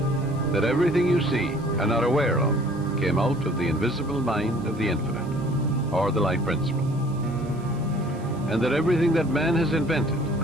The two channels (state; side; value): noise; right; hiss, 26 dB below the sound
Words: that everything you see and are aware of came out of the invisible mind of the infinite, or the life principle. And that everything that man has invented,